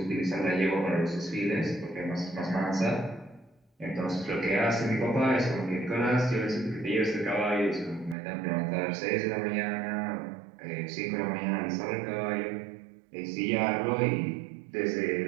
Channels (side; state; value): left; drops out; at 8.2 s